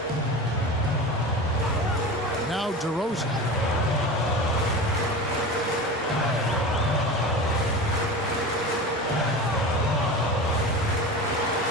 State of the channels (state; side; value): normal; both; correlation 0.30